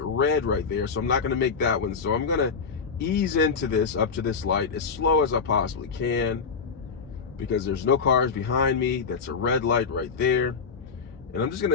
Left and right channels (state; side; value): quieter; right; 5.5 dB